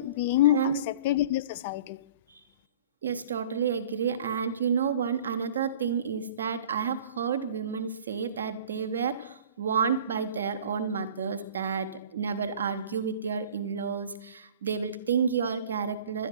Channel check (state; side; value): inverted; both; correlation -0.44